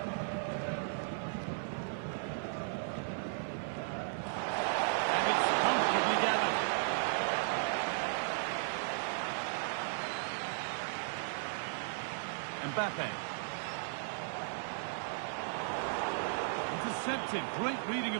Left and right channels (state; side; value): silent; left; 54 dB below the other